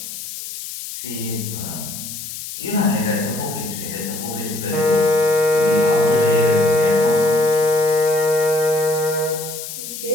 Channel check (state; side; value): noise; left; hiss, 9 dB below the sound